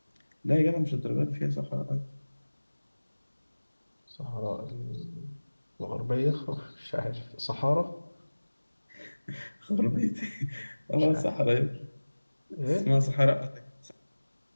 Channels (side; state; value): both; inverted; correlation -1.00